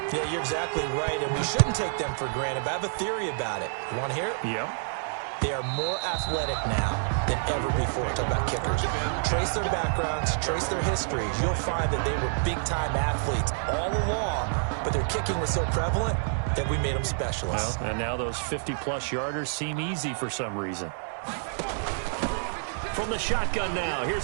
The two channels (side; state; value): left; silent; 59 dB below the other